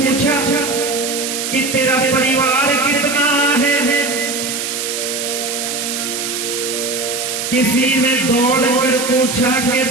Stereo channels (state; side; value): noise; right; hiss, 3 dB below the sound